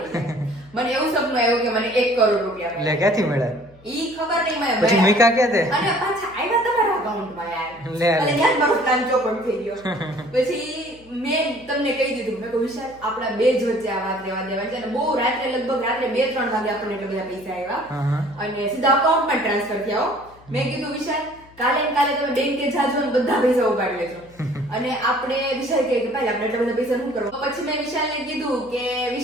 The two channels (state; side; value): noise; left; hum, 25 dB below the sound